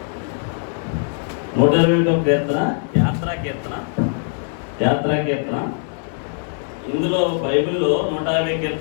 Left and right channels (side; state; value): right; silent; 59 dB below the other